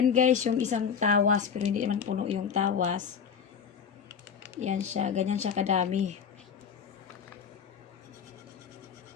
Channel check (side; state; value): right; quieter; 7.0 dB